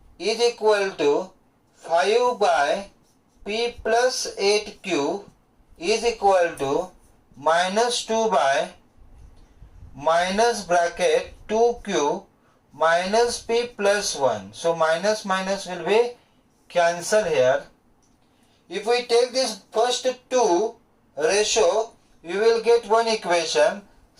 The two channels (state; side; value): identical; both; correlation 1.00